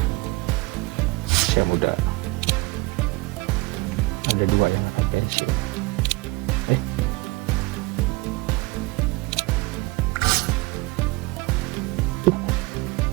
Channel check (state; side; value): quieter; left; 22.9 dB